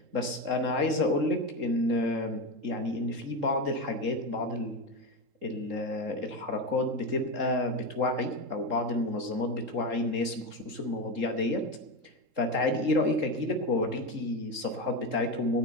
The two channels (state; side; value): late; left; 3.7 ms